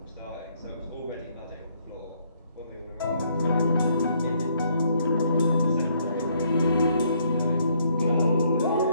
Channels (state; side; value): inverted; both; correlation -0.69